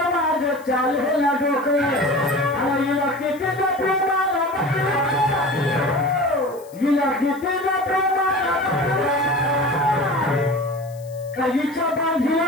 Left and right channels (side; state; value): left; noise; hiss, 25 dB below the sound